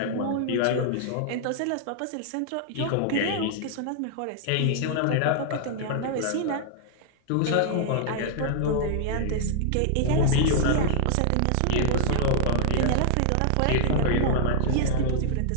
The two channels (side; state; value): both; different; correlation -0.01